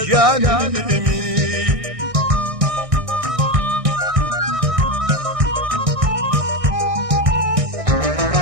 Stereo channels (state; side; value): late; left; 1.6 ms